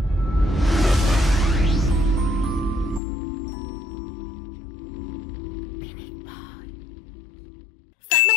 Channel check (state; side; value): drops out; right; at 3.0 s